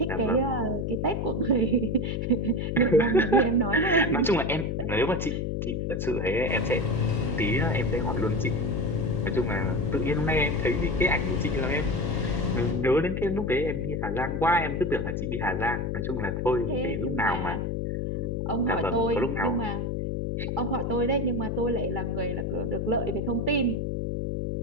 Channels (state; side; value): noise; left; hum, 1 dB below the sound